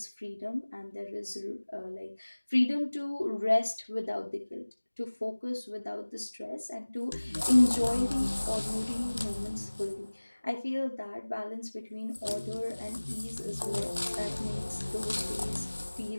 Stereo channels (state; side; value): inverted; both; correlation -1.00